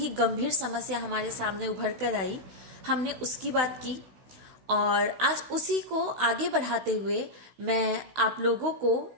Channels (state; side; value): late; left; 16 ms